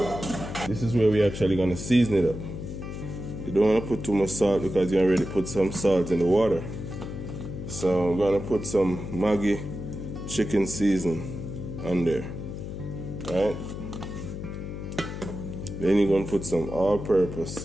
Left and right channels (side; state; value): left; noise; hum, 7 dB below the sound